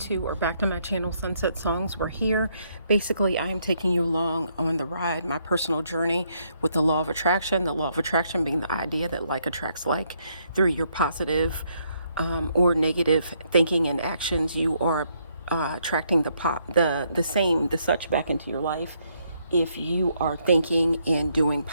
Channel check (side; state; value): both; inverted; correlation -0.73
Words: or back to my channel, Sunset Songs. We're here. Basically, I am taking you along on the ride, my personal journey with the law of attraction. The law of attraction being the idea that like attracts like through your positive or negative thinking and actions. You are attracting the such back into your life. If you are thinking and doing